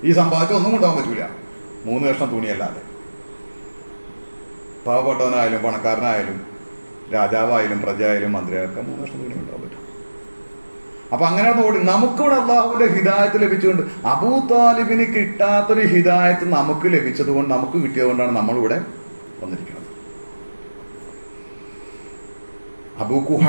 ഈ സമ്പാദിച്ച ഒന്നും കൊണ്ടുപോകാൻ പറ്റൂല, 3 കഷ്ണം തുണിയല്ലാതെ. പാവപ്പെട്ടവനായാലും പണക്കാരനായാലും രാജാവായാലും പ്രജയായാലും മന്ത്രിയായാലും 3 കഷ്ണം തുണി കൊണ്ടുപോകാൻ പറ്റും. അപ്പൊ അങ്ങനെ ഓടി. നമുക്കിവിടെ അള്ളാഹുവിന്റെ ഹിദായത്ത് ലഭിച്ചുകൊണ്ട്, അബൂ താലിബിന് കിട്ടാത്തൊരു ഹിദായത്ത് നമുക്ക് ലഭിച്ചത് കൊണ്ട്, നമുക്ക് കിട്ടിയതുകൊണ്ടാണ് നമ്മളിവിടെ വന്നിരിക്കുന്നത്. അബൂ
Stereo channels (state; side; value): inverted; both; correlation -1.00